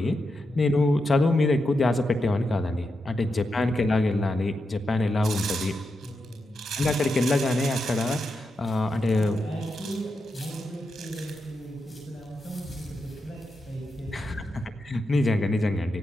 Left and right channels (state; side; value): normal; both; correlation 0.86